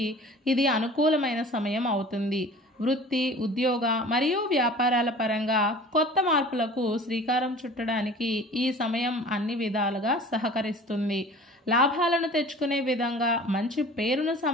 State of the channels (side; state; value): both; normal; correlation 0.43